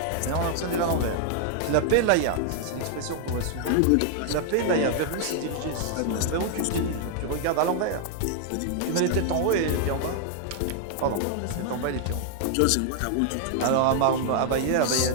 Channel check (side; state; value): both; different; correlation 0.00